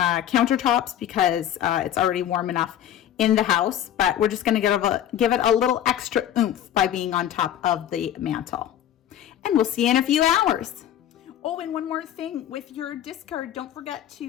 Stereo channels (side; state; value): right; quieter; 10.8 dB